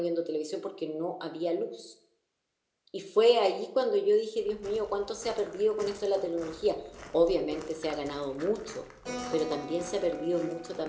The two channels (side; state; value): both; identical; correlation 1.00